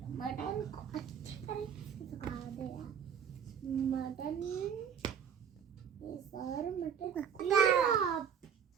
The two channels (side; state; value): left; quieter; 7.7 dB